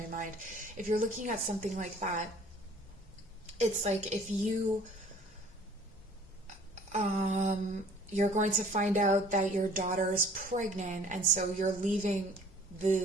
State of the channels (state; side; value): normal; both; correlation 0.52